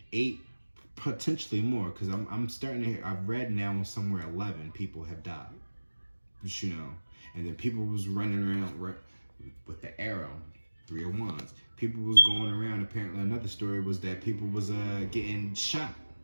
8, potentially more, because I'm starting to hear, I've read now somewhere 11 people have died. And then people was running around with the arrow, 3 of wands. People was going around. Apparently another story was that people was getting shot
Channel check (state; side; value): inverted; both; correlation -1.00